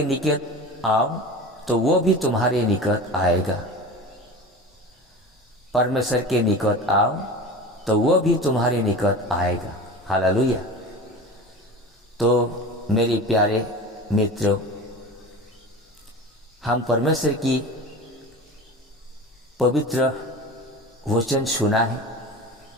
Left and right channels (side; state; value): both; normal; correlation 0.33